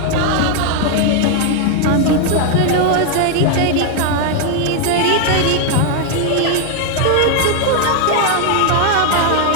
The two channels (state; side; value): different; both; correlation 0.00